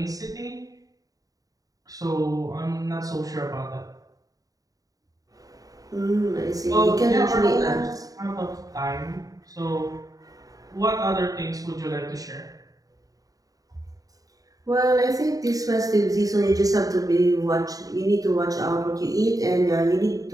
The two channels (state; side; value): late; left; 0.17 ms